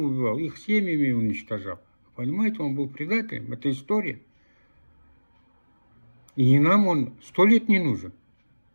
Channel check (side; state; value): both; inverted; correlation -1.00